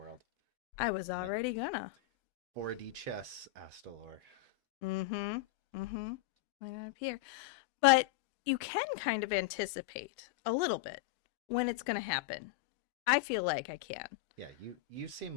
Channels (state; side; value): quieter; right; 15.7 dB